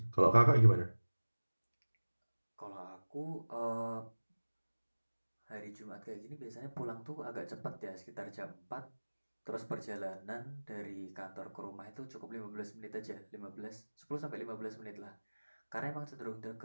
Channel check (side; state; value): both; inverted; correlation -1.00